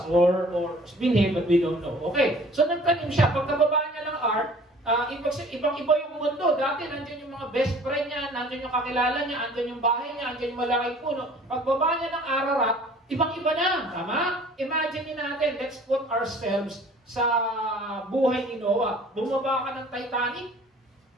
or binhi, but we don't know. Okay, so nagtanim siya. Pagkababa niya ng ark, ibang-iba yung mundo. Dati, nandiyan yung mga best friend niya, nandiyan yung kakilala niya, nandiyan yung bahay niya, nandiyan yung malaking puno. Pagbaba niya ng Ararat, ibang-iba na. Tama? Imagine natin, let's put ourselves sa buhay ni Noah. Bumaba ka ng Titanic,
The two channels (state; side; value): normal; both; correlation 0.50